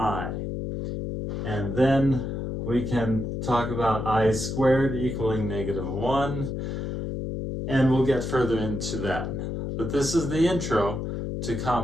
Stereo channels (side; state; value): left; noise; hum, 4 dB below the sound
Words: And then we can talk about I squared equaling -1, and we'll get further into that. But this is the intro to